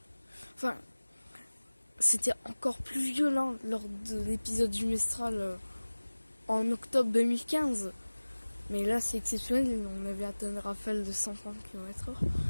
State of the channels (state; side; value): inverted; both; correlation -1.00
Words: Enfin, c'était encore plus violent lors de l'épisode du Mistral en octobre 2015. Mais là, c'est exceptionnel. On avait atteint une rafale de 130 km/h.